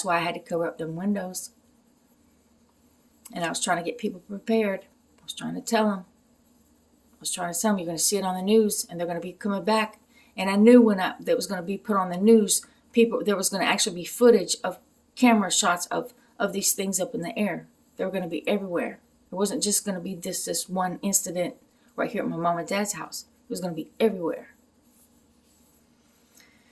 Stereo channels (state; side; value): identical; both; correlation 1.00